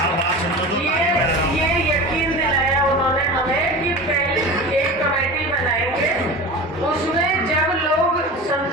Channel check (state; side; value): normal; both; correlation 0.31